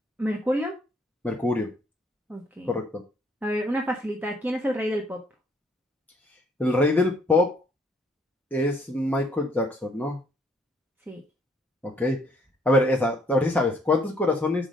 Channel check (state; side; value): normal; both; correlation 0.66